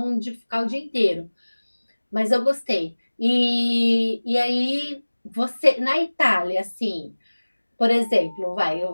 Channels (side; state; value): both; inverted; correlation -1.00